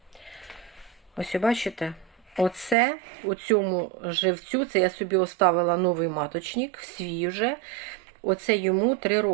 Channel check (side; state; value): left; drops out; at 2.8 s